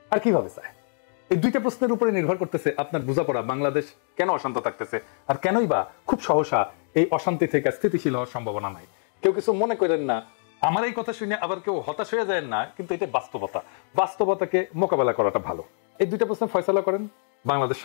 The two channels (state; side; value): silent; right; digital silence